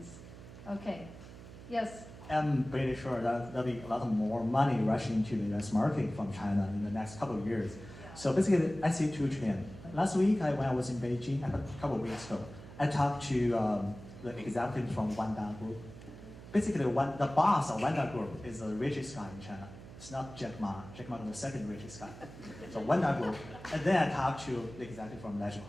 Okay. Yes. I'm pretty sure that there'll be a lot more money rushing into the US market from China in the next couple of years. Yeah. So basically, I see 2 trends. Last week, when I was in Beijing, a couple of weeks ago, I talked to the executives from Wanda Group. Basically, the boss of Wanda Group is the richest guy in China. It's not Jack Ma. Jack Ma is the second richest guy. So Wanda Group. And then I talked to the executive from Legend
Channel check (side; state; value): right; noise; hum, 16 dB below the sound